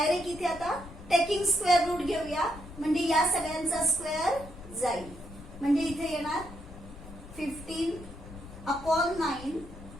इथे आता टेकिंग स्क्वेअर रूट घेऊया म्हणजे या सगळ्यांचा स्क्वेअर जाईल. म्हणजे इथे येणार 15 upon 9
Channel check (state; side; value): noise; left; rumble, 16 dB below the sound